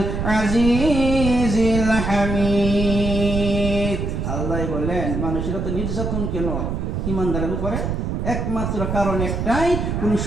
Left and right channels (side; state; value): right; noise; rumble, 2 dB below the sound